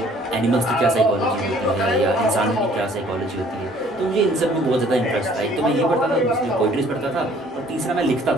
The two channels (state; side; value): normal; both; correlation 0.57